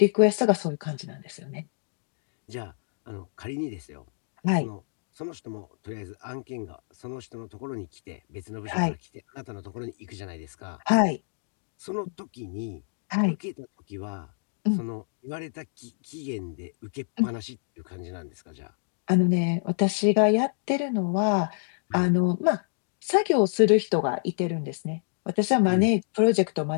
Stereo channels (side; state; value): right; silent; 59 dB below the other